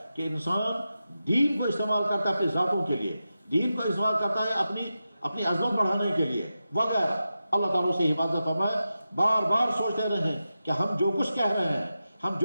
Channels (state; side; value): inverted; both; correlation -0.91